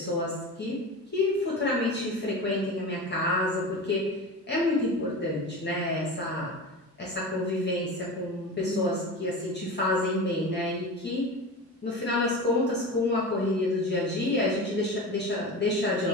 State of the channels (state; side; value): normal; both; correlation 0.28